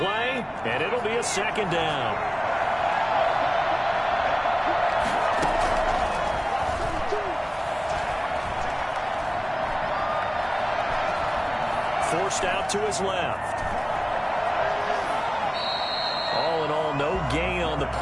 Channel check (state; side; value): identical; both; correlation 1.00